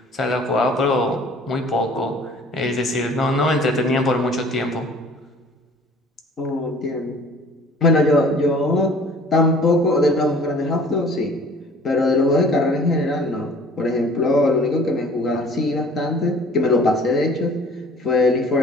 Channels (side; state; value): both; normal; correlation 0.50